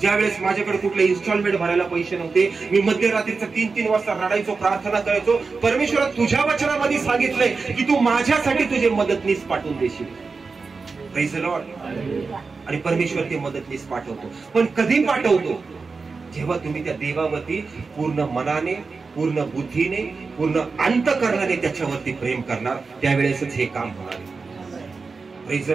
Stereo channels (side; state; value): left; quieter; 4.5 dB